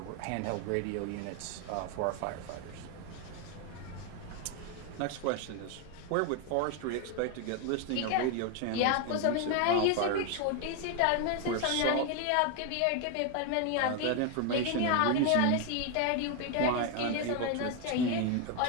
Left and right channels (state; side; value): different; both; correlation 0.01